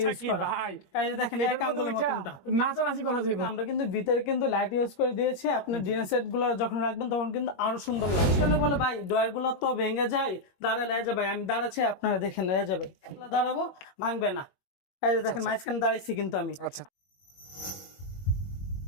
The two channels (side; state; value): right; late; 21 ms